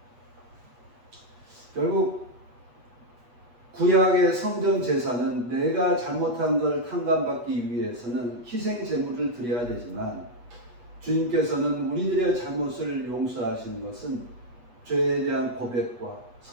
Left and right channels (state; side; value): late; left; 8.2 ms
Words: 결국 구약의 성전 제사는 내가 잘못한 걸 탕감받기 위해서는 희생 제물을 드려야 되지만, 주님께서는 우리들의 잘못을 용서하시는 것은 죄에 대한 고백과